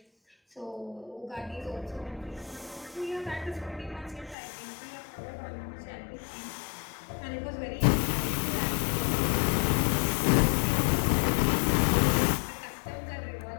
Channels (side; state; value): right; drops out; at 4.4 s